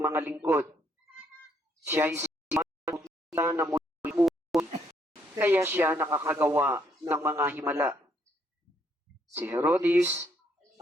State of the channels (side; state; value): both; normal; correlation 0.71